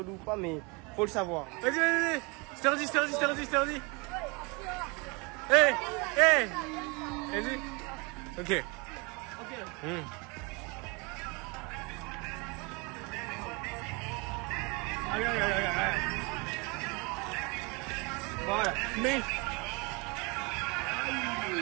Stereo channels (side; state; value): left; quieter; 28.8 dB